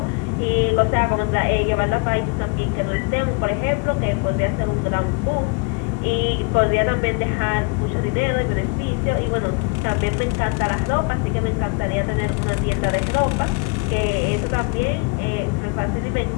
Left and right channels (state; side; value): quieter; right; 32.2 dB